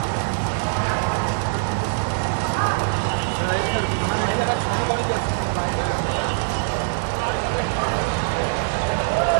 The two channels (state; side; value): silent; left; 64 dB below the other